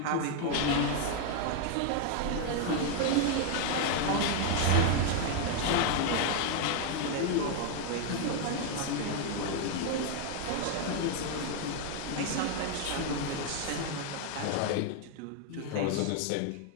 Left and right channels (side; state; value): both; different; correlation 0.00